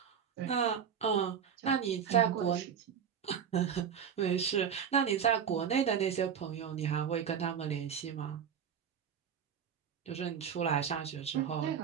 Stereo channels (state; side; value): quieter; left; 7.8 dB